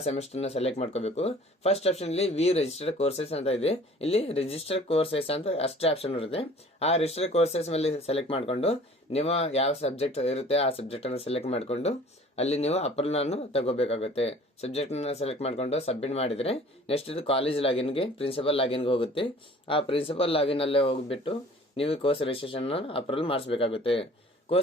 ಸೆಮಿಸ್ಟರ್ ನ ಸೆಲೆಕ್ಟ್ ಮಾಡ್ಕೋಬೇಕು. ಫಸ್ಟ್ ಆಪ್ಷನ್ ಇಲ್ಲಿ ರಿಜಿಸ್ಟರ್ಡ್ ಕೋರ್ಸಸ್ ಅಂತ ಇದೆ. ಇಲ್ಲಿ ರಿಜಿಸ್ಟರ್ಡ್ ಕೋರ್ಸಸ್ ಅಂತ ಅಷ್ಟೇ ಆಪ್ಷನ್ ಇರುತ್ತೆ. ಆ ರಿಜಿಸ್ಟರ್ಡ್ ಕೋರ್ಸಸ್ ಮೇಲೆ ಸೆಲೆಕ್ಟ್ ಮಾಡ್ಕೊಂಡು ನಿಮ್ಮ ಯಾವ ಸಬ್ಜೆಕ್ಟ್ ಇರುತ್ತೆ ಆ ಸಬ್ಜೆಕ್ಟ್ ಅನ್ನು ಸೆಲೆಕ್ಟ್ ಮಾಡ್ಕೊಂಡು ಅಲ್ಲಿ ನೀವು ಅಪ್ರೂವಲ್ ಅನ್ನು ತಗೋಬೇಕಾಗುತ್ತೆ. ಸಬ್ಜೆಕ್ಟ್ ನ ಸೆಲೆಕ್ಟ್ ಮಾಡ್ಕೊಂಡು ಸಬ್ಮಿಟ್ ಮಾಡಿದ್ರೆ ನೆಕ್ಸ್ಟ್ ಇದು ಕಾಲೇಜ್ ಲಾಗಿನ್ಗೆ ಪ್ರಿನ್ಸಿಪಲ್ ಲಾಗಿನ್ಗೆ ಹೋಗುತ್ತೆ. ಆ ಪ್ರಿನ್ಸಿಪಲ್ ಲಾಗಿನ್ ಅಲ್ಲೇ ಹೋಗ್ಬಿಟ್ಟು ನೀವು ಕೋರ್ಸ್ ರಿಜಿಸ್ಟ್ರೇಷನ್ ಅಪ್ರೂವಲ್ ಮಾಡಿಸಬೇಕಾಗುತ್ತೆ.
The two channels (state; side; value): normal; both; correlation 0.49